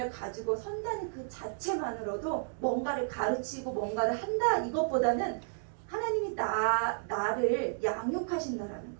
가지고 선다는 그 자체만으로도 뭔가를 가르치고 뭔가를 한다 이것보다는 하나님이 나를 양육하신다라는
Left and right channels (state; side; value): silent; left; digital silence